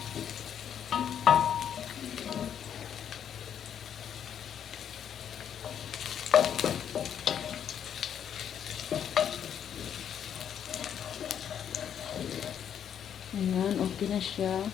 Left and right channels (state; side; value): quieter; right; 8.9 dB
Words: Ayan, okay na siya.